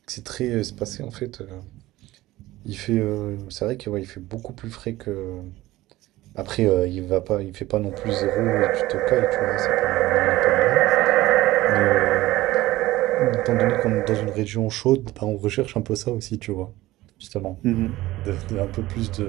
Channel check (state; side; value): quieter; left; 17.3 dB